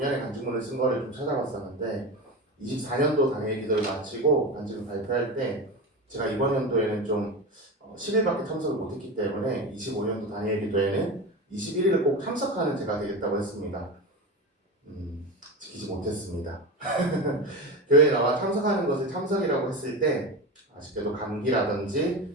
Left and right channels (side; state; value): both; normal; correlation 0.23